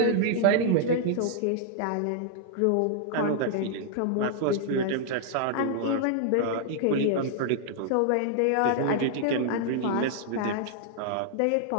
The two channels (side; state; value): both; different; correlation -0.01